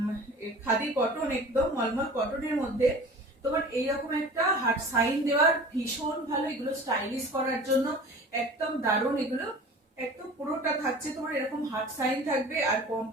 খাদি কটন, একদম মলমল কটনের মধ্যে তোমার এইরকম একটা হার্ট সাইন দেওয়ার ভীষণ ভালো। এগুলো স্টাইলিশ করার জন্য একদম দারুণ। এগুলো একদম পুরোটা থাকছে তোমার এরকম হার্ট সাইন থাকবে, আর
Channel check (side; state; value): both; normal; correlation 0.40